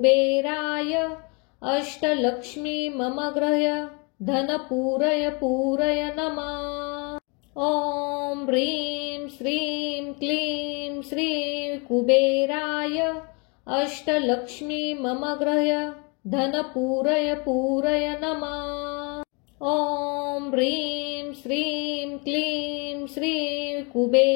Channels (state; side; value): quieter; right; 32.2 dB